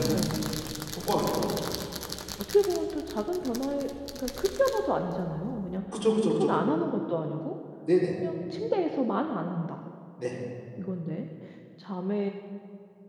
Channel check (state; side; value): identical; both; correlation 1.00